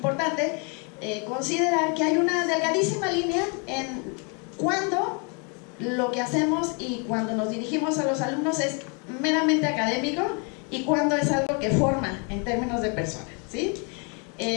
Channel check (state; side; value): quieter; right; 35.2 dB